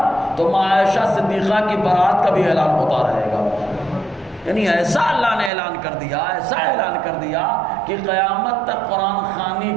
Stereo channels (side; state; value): left; drops out; at 5.5 s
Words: تو ماں عائشہ صدیقہ کی بارات کا بھی اعلان ہوتا رہے گا۔ یعنی ایسا اللہ نے اعلان کر دیا، ایسا اعلان کر دیا کہ قیامت تک قرآن خوانی